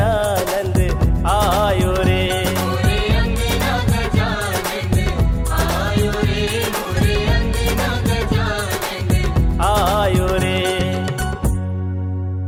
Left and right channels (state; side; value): identical; both; correlation 1.00